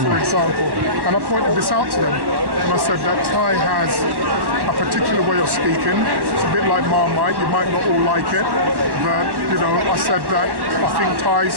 for example. And I pointed this out to them, and I said that Ty has a particular way of speaking. It's a bit like Marmite. You might not all like it, but you know, I said that I think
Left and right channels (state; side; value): late; left; 1.1 ms